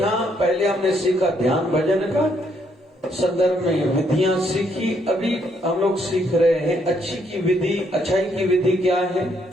पहले हमने सीखा ध्यान भजन का संदर्भ में विधियां सीखी, अभी हम लोग सीख रहे हैं अच्छी की विधि। अच्छाई की विधि क्या है?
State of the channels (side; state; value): both; normal; correlation 0.72